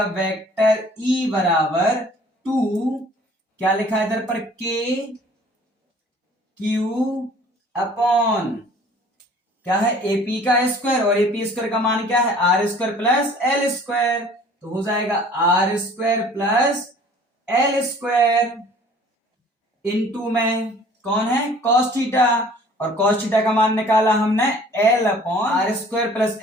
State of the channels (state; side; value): normal; both; correlation 0.51